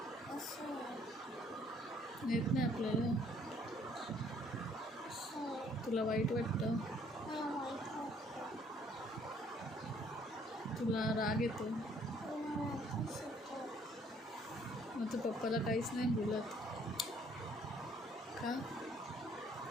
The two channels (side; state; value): both; normal; correlation 0.62